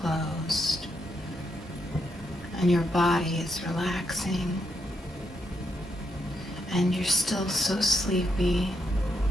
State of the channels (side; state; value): both; normal; correlation 0.80